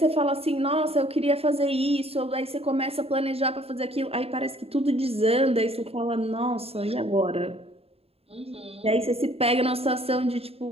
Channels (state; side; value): late; left; 0.29 ms